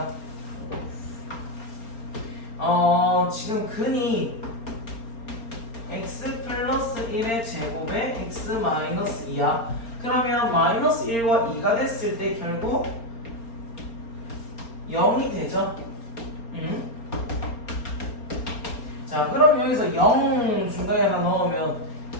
지금 근이 x 플러스 1의 제곱에 x 마이너스 2야. 그러면 마이너스 1과 2가 됐을 때 결국 0이 되죠. 자, 그럼 여기서 0 중간에 하나 넣으면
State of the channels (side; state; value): right; late; 4.3 ms